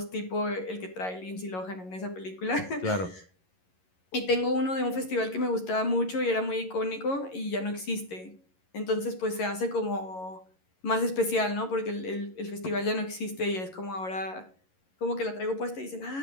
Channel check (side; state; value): right; late; 11 ms